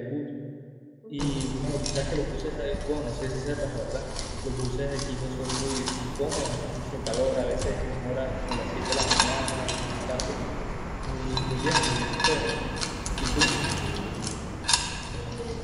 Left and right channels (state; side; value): identical; both; correlation 1.00